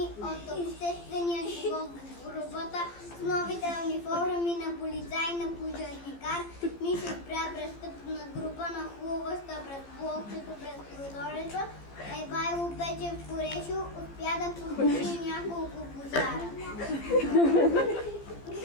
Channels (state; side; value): late; right; 15 ms